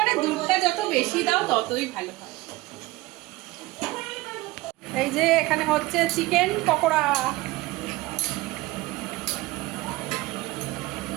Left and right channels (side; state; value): left; quieter; 19.7 dB